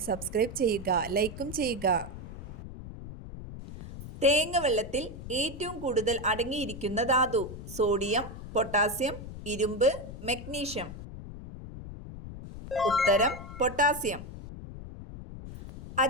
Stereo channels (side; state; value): left; noise; rumble, 11 dB below the sound